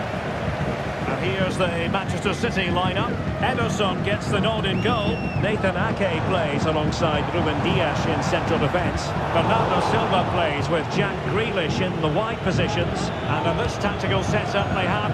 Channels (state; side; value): identical; both; correlation 1.00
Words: And here's the Manchester City lineup. Ederson gets the nod in goal. Nathan Ake plays alongside Ruben Dias in central defence. Bernardo Silva plays with Jack Grealish in the wide positions. And in this tactical setup, they